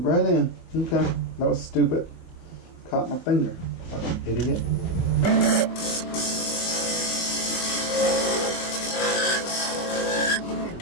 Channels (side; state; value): right; late; 24 ms